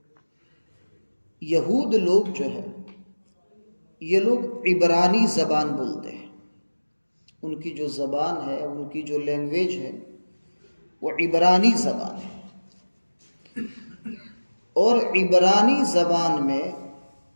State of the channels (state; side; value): inverted; both; correlation -1.00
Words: یہود لوگ جو ہے یہ لوگ عبرانی زبان بولتے ہیں. ان کی جو زبان ہے، ان کی جو لینگویج ہے وہ عبرانی زبان ہے. اور عبرانی زبان میں